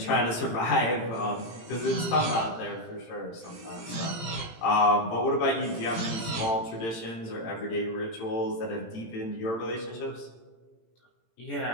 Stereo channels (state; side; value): late; right; 18 ms